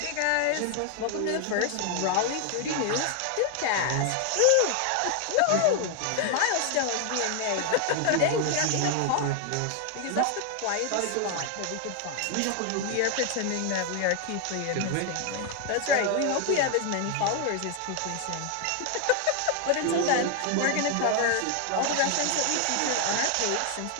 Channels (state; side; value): different; both; correlation 0.00